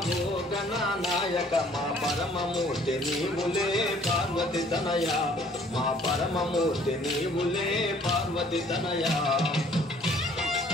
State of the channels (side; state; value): both; normal; correlation 0.57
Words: నాయక మా పరమమూర్తి నీవులే పార్వతి తనయ మా పరమమూర్తి నీవులే పార్వతి తనయ